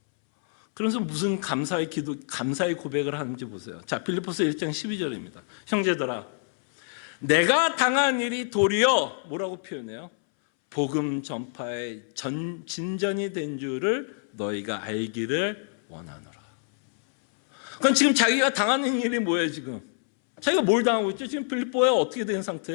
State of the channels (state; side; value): silent; right; 60 dB below the other